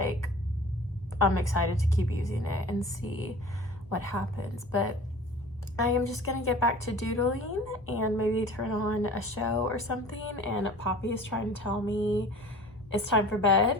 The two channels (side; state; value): both; normal; correlation 0.43